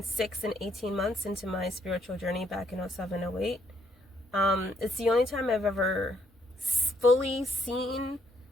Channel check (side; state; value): both; normal; correlation 0.71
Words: 6 and 18 months into my spiritual journey back in 07, 08. It's the only time I've ever fully seen